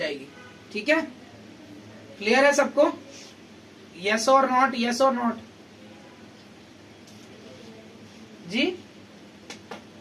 ठीक है। क्लियर है सबको? Yes or not, yes or not? जी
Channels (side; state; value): both; identical; correlation 1.00